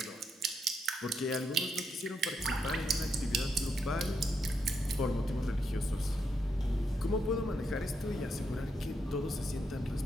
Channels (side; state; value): both; normal; correlation 0.80